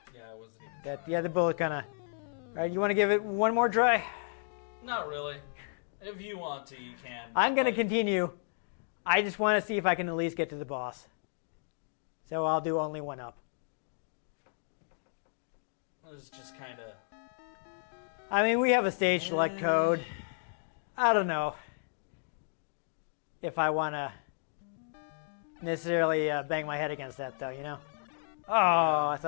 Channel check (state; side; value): silent; right; digital silence